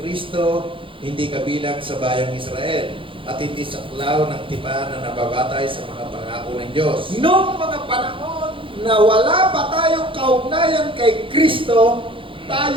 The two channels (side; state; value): left; late; 0.25 ms